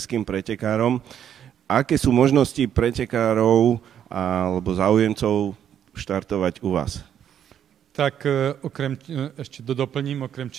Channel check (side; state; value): left; quieter; 9.4 dB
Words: pretekárom. Aké sú možnosti pretekárov alebo záujemcov štartovať u vás? Tak ešte doplním, okrem